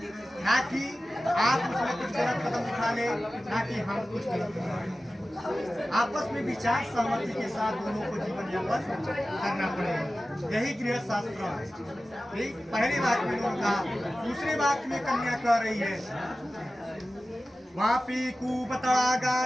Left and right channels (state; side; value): normal; both; correlation 0.95